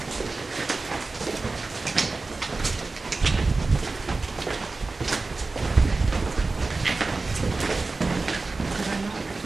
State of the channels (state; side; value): quieter; left; 3.6 dB